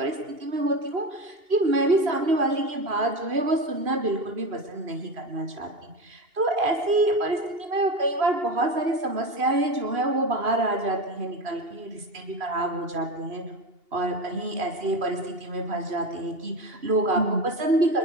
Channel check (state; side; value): late; left; 2.8 ms